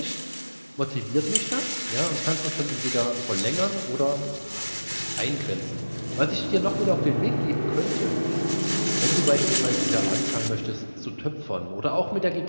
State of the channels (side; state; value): both; inverted; correlation -1.00